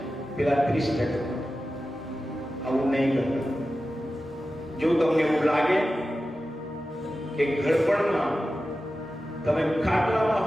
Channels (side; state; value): both; normal; correlation 0.93